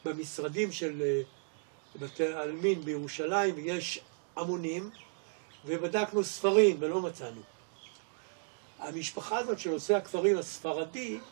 במשרדים של בתי העלמין בירושלים, ויש המונים, ובדקנו ספרים ולא מצאנו. המשפחה הזאת של עושה הכפרים הספרדי,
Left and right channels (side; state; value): left; silent; digital silence